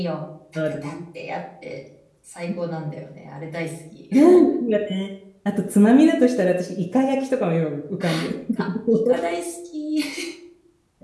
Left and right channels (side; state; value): both; identical; correlation 1.00